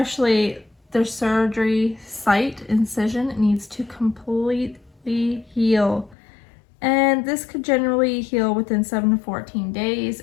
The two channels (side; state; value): right; drops out; at 6.2 s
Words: their surgery site, incision, needs to completely heal. And this could generally heal within 7 to 14 days.